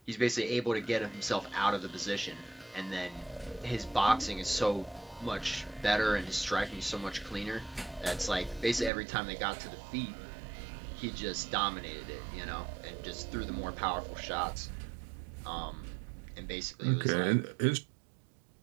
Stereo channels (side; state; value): left; drops out; at 8.9 s